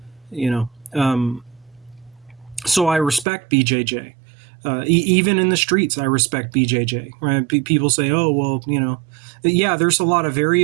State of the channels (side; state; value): left; drops out; at 3.2 s